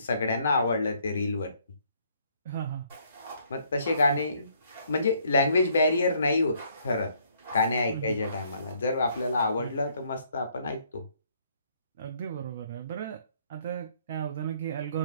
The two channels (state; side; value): inverted; both; correlation -0.67